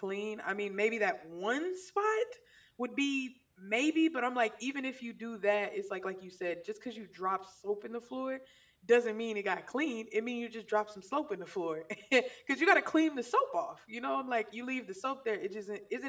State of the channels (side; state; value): both; identical; correlation 1.00